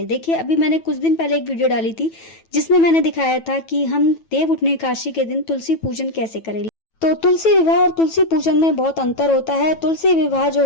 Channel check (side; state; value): right; late; 9.1 ms